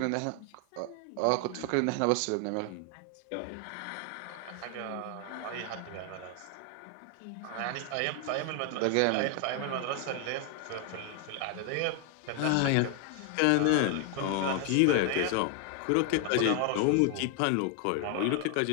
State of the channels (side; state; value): both; different; correlation 0.00